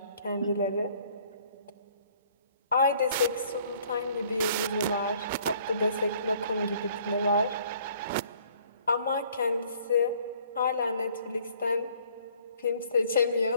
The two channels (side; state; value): both; inverted; correlation -0.59